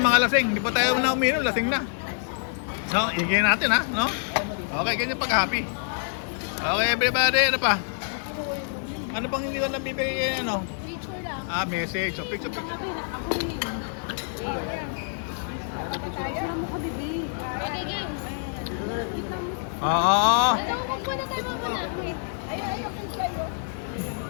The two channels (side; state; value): right; silent; digital silence